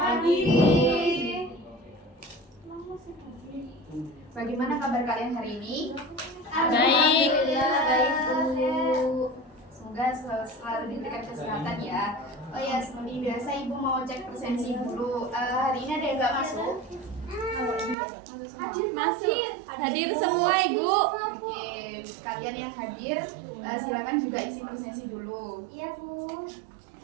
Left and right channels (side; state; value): left; drops out; at 17.9 s